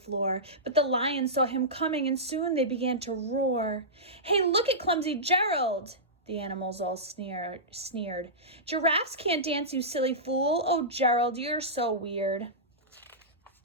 but the lions saw him coming, and soon they began to roar. "Hey, look at clumsy Gerald!" The animals all sneered. "Giraffes can't dance, you silly fool. Oh, Gerald, you're so weird."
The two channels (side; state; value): both; normal; correlation -0.15